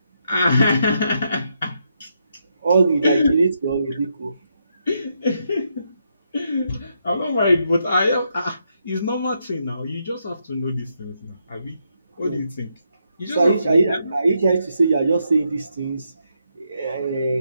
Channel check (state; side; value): inverted; both; correlation -0.80